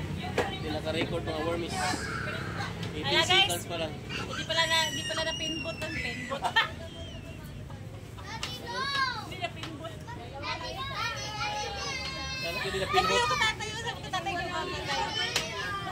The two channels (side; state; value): both; identical; correlation 1.00